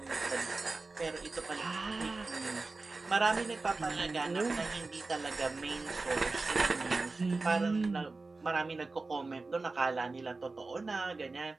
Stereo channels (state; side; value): quieter; left; 3.6 dB